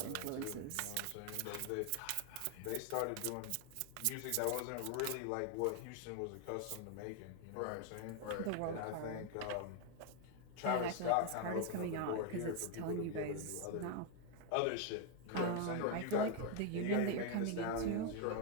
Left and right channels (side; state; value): both; different; correlation 0.01